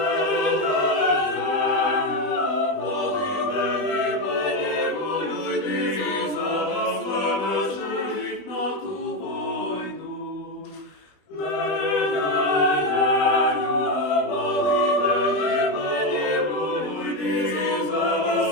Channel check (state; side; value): late; right; 20 ms